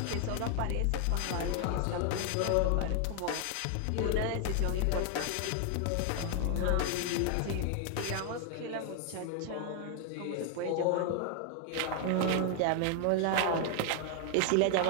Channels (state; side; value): different; both; correlation 0.00